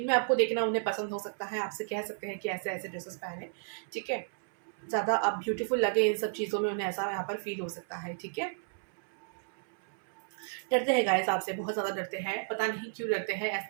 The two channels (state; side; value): silent; left; 56 dB below the other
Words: आपको देखना उन्हें पसंद हो सकता है। आपसे कह सकते हैं कि ऐसे ऐसे ड्रेसेस पहने, ठीक है। ज़्यादा आप ब्यूटीफुल लगे इन सब चीज़ों में, उन्हें ऐसा यहाँ पर फील हो सकता है, ठीक है। डरते हैं गाइस आपसे, बहुत ज़्यादा डरते हैं, पता नहीं क्यों डरते हैं।